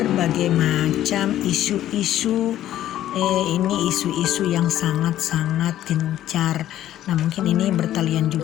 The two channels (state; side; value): quieter; right; 12.6 dB